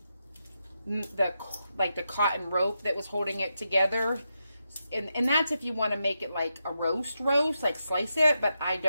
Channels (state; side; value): inverted; both; correlation -0.86